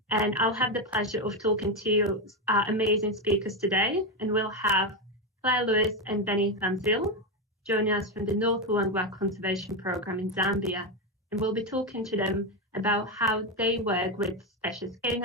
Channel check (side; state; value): both; normal; correlation 0.10